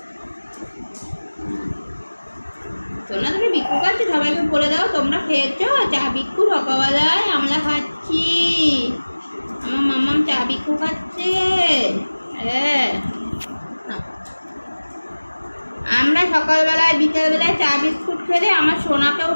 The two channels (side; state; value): both; inverted; correlation -1.00